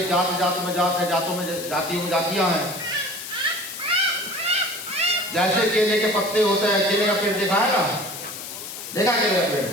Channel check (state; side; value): noise; left; hiss, 10 dB below the sound